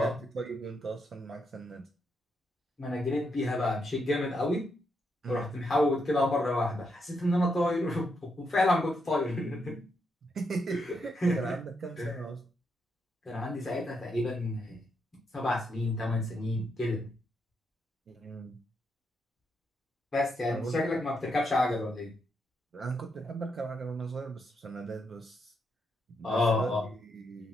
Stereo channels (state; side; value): normal; both; correlation 0.80